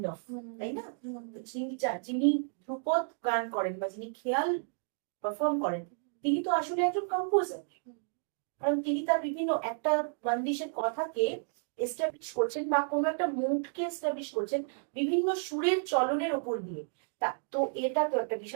অফ, তাই না? যিনি ধ্রুপদ গান করেন বা যিনি খেয়াল পারফর্ম করেন, তিনি তো আসলে একজন কম্পোজার। কারণ তিনি তার বিভিন্ন একটা বান্দিশের কথাকে এস্টাবলিশ করছেন বা কোনো একটা মুডকে এস্টাবলিশ করছেন বিভিন্ন সুরের চলনের উপর দিয়ে। তো এটা তো একটা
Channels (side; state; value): left; silent; digital silence